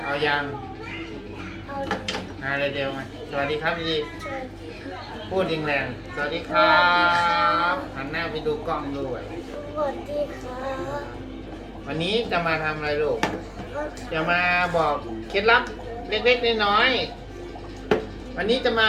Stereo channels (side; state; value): both; identical; correlation 1.00